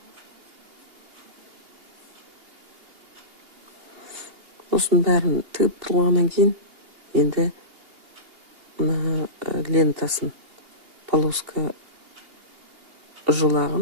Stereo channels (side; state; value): left; late; 2.8 ms